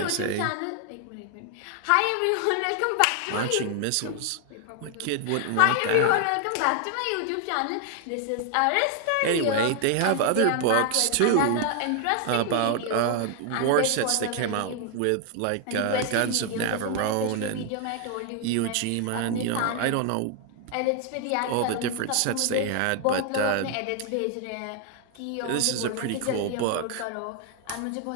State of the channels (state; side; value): different; both; correlation 0.00